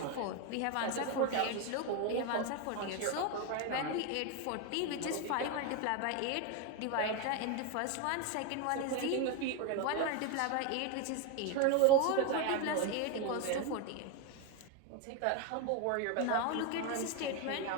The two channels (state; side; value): different; both; correlation 0.02